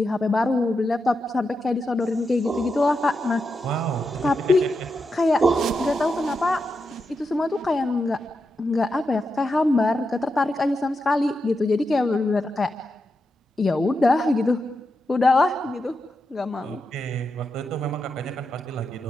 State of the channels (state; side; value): normal; both; correlation 0.86